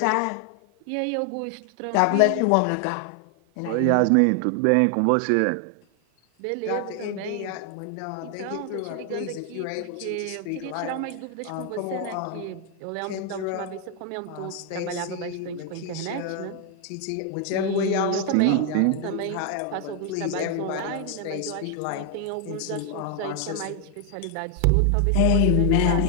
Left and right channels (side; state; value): both; different; correlation 0.00